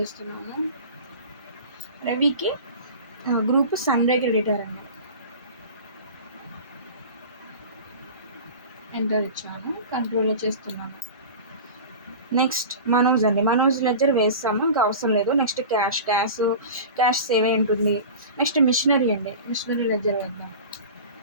రవికి గ్రూప్ సన్రే క్రెడిటర్ అండి, ఎంటర్ ఇచ్చాను, కంట్రోల్లో చేస్తున్నాను. నెక్స్ట్ మనోజ్ అండి, మనోజ్ లెడ్జర్ వేస్తాము, ఇంకా అవసరం లేదు. నెక్స్ట్ క్యాష్ సేవ్ అయి ఉంటుంది. నెక్స్ట్ మిషనరీ అండి, మిషనరీ లెడ్జర్ వేద్దాం.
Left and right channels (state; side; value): inverted; both; correlation -0.35